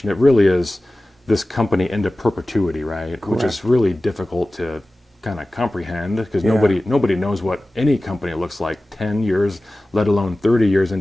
it really is this company into perpetuity, right? Correct. Which is really difficult to kind of comprehend, because nobody knows what any company looks like 10 years, let alone 30 years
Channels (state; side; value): normal; both; correlation 0.96